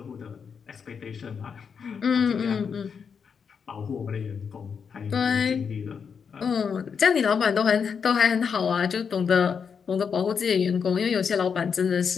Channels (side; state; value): right; quieter; 6.4 dB